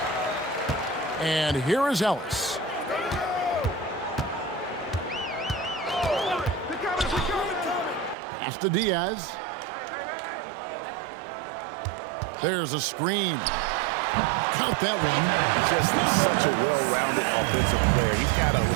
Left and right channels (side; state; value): left; drops out; at 8.2 s